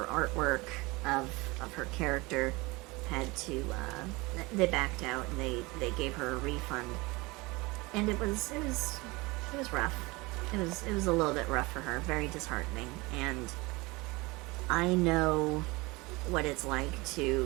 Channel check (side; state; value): left; quieter; 23.7 dB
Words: artwork of her character had to, they backed out and they gave her a refund. And it was rough. It was a little bit rough for her, very disheartening. And I know what it's like